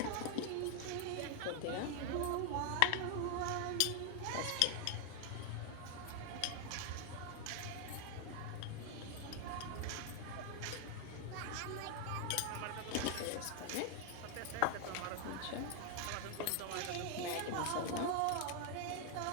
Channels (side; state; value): both; different; correlation 0.00